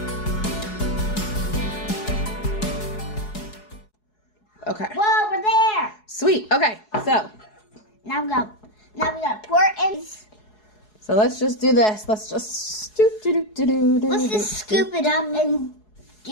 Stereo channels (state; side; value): late; right; 4.7 ms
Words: Okay. Whoa, we're there. Sweet. Okay, so. Now we gotta pour it in. So let's just do this. Let's just Let's just scoop it up and